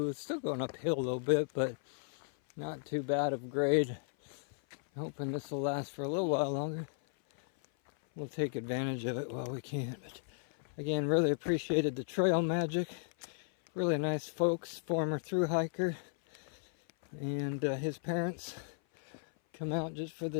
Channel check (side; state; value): right; silent; 54 dB below the other